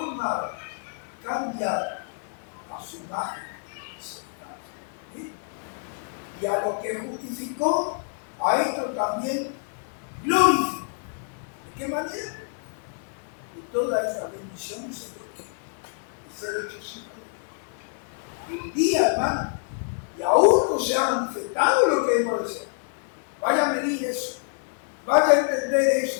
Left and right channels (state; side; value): silent; right; 60 dB below the other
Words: cambiado a su imagen y semejanza. ¿Sí? Y a lo que justificó, a esto también glorificó. ¿De qué manera? De todas estas bendiciones se ser hecho sin un día, hermano, y aún no se ha manifestado lo que hemos deseado. Vaya a medir eso, vaya a entender